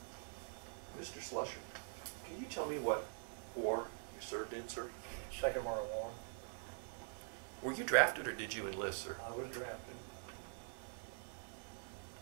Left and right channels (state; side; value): silent; left; digital silence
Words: Mr. Slusser, can you tell me what war you served in, sir? Second World War. Were you drafted or did you enlist, sir? I was drafted.